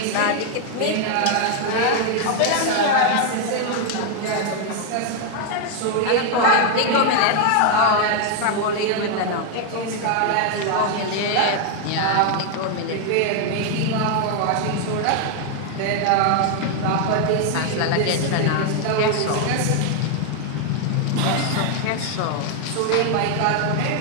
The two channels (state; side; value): different; both; correlation 0.00